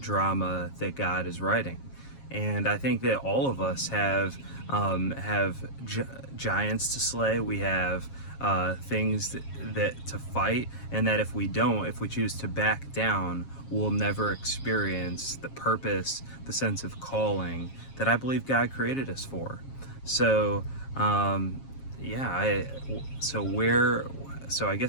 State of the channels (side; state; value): right; late; 7.4 ms